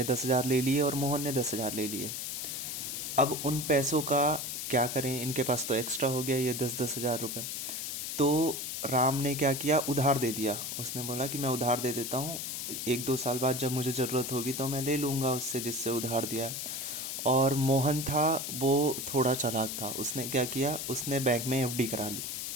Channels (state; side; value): noise; left; hiss, 4 dB below the sound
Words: 10,000 ले लिए और मोहन ने 10,000 ले लिए। अब उन पैसों का क्या करें, इनके पास तो एक्स्ट्रा हो गया ये 10,000 रुपये। तो राम ने क्या किया, उधार दे दिया। उसने बोला कि मैं उधार दे देता हूँ, 1-2 साल बाद जब मुझे ज़रूरत होगी तो मैं ले लूँगा उससे जिससे उधार दिया है। और मोहन था, वो थोड़ा चालाक था। उसने क्या किया, उसने बैंक में एफडी करा ली